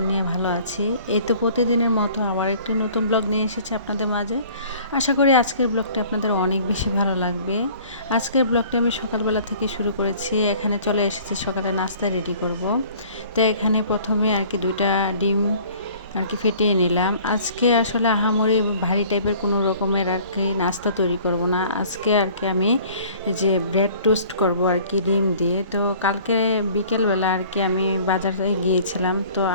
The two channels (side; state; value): both; inverted; correlation -0.51